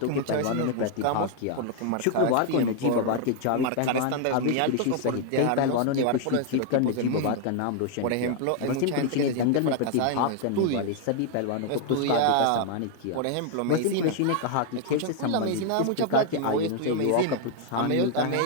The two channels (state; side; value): different; both; correlation 0.00